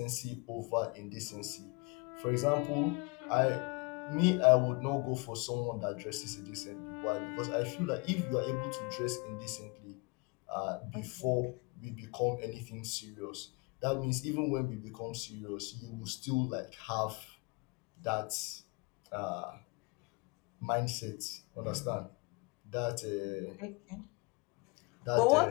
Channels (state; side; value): quieter; right; 29.5 dB